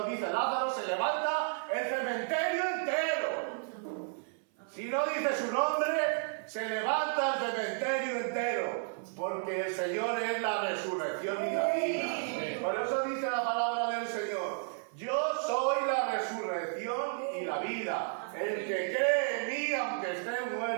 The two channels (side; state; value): left; silent; 56 dB below the other